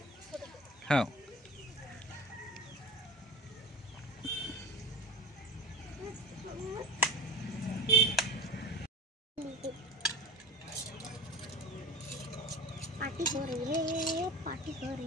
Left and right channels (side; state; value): both; normal; correlation 0.31